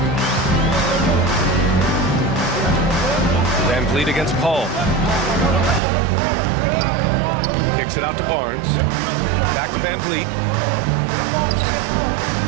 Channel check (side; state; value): left; drops out; at 5.8 s